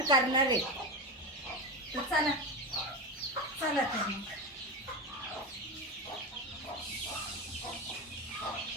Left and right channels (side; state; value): both; normal; correlation 0.19